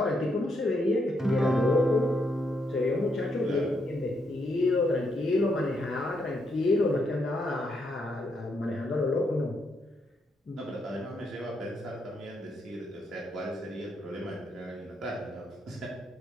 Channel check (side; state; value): both; normal; correlation 0.78